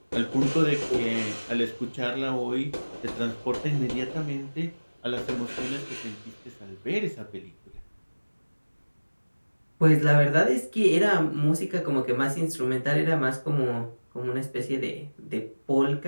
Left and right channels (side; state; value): both; inverted; correlation -1.00